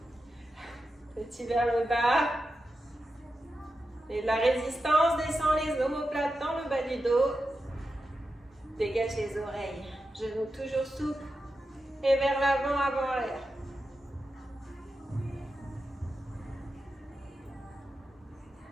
Petit vers le bas. Et de la résistance, descend les omoplates dans le bas du dos. Dégage les oreilles. Genoux toujours souples. Et vers l'avant, avant l'air.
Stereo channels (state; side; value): normal; both; correlation 0.90